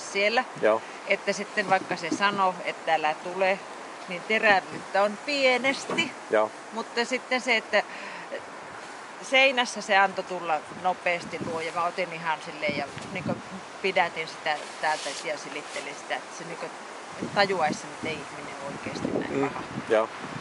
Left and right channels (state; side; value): identical; both; correlation 1.00